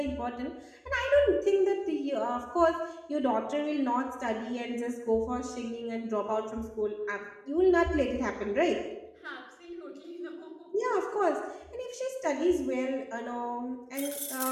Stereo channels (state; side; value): identical; both; correlation 1.00